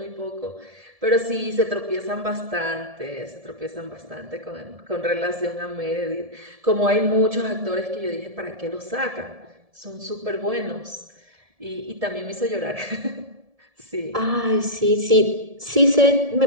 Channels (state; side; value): late; left; 1.7 ms